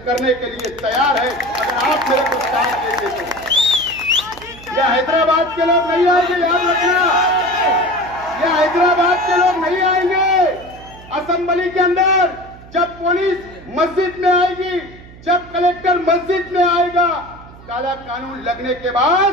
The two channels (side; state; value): right; noise; hum, 20 dB below the sound